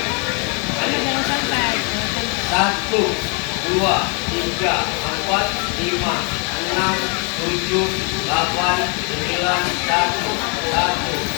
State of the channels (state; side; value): quieter; right; 34.7 dB